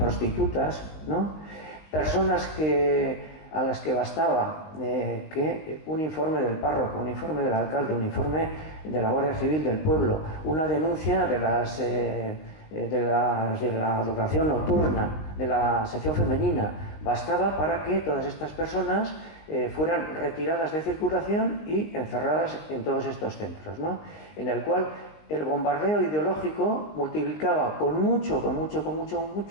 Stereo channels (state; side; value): late; right; 19 ms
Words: ¿no? Personas a las que bastaba que un informe del párroco, un informe del alcalde, un informe de la Guardia Civil del pueblo, una denuncia de las de la adoración nocturna, de la sección femenina, bastaba para que todas estas personas fueran retiradas de circulación y encerradas en todos estos centros, ¿no? En el cual el bombardeo ideológico multiplicaba con mucho